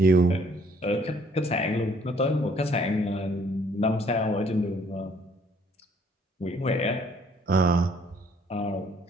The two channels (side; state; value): both; normal; correlation 0.62